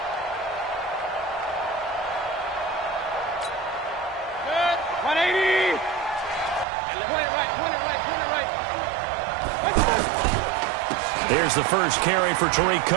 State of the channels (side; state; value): left; drops out; at 6.7 s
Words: Here's the first carry for Tariq